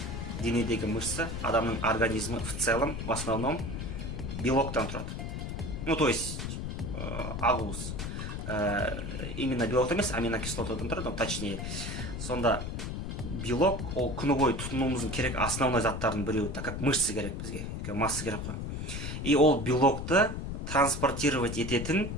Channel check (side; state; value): left; noise; rumble, 5 dB below the sound